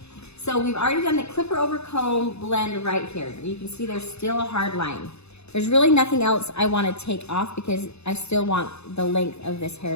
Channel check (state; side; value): late; right; 0.80 ms